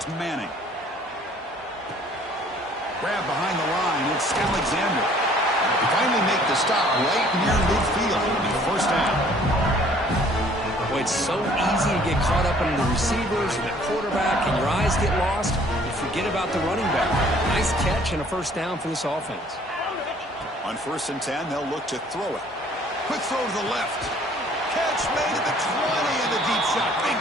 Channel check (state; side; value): normal; both; correlation 0.57